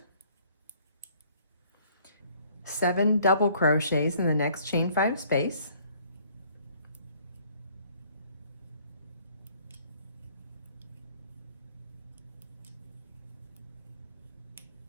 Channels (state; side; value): inverted; both; correlation -0.59